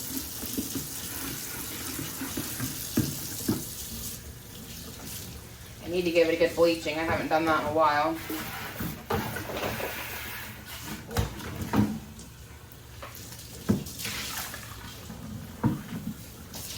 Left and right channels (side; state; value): both; identical; correlation 1.00